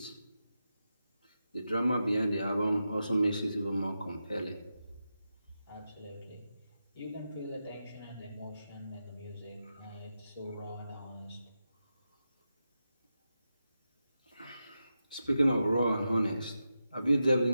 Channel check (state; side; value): inverted; both; correlation -0.89